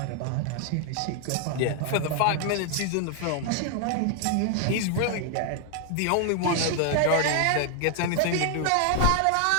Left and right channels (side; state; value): both; different; correlation 0.00